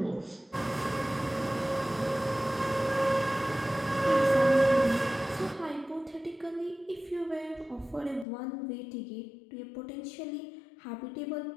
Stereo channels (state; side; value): drops out; right; at 8.2 s